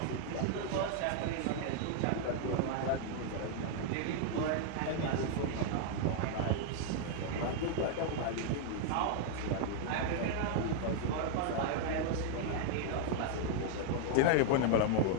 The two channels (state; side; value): different; both; correlation -0.01